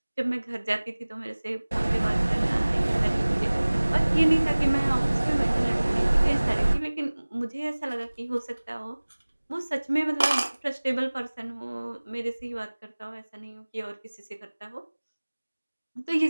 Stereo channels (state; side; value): inverted; both; correlation -1.00